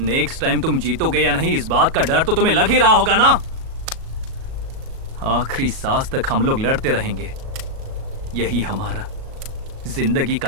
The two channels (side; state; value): left; late; 37 ms